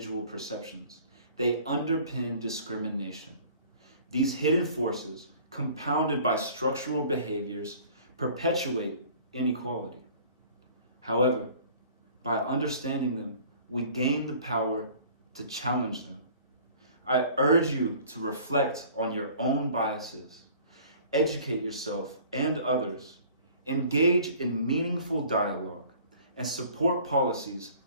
perceptions, they underpin discrimination. These hidden forces, compounded by structural behaviors, perpetuate inequality. However, by understanding them, we gain the power to challenge them. I urge you to reflect on your own biases, educate yourself and others, engage in meaningful dialogue, and support policies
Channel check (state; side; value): inverted; both; correlation -0.49